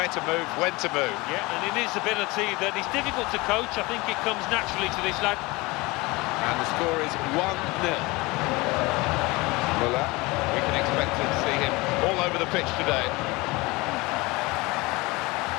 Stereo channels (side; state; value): right; quieter; 23.2 dB